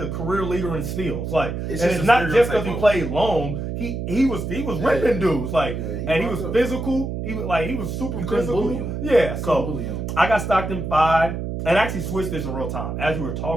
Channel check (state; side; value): noise; right; hum, 4 dB below the sound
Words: career leader in steals. Like, it's not just because he played long. He was ripping dudes. Like, and he was physical. He was super physical. Yeah. So I got Stockton 5, and I actually switched this in real time. As we were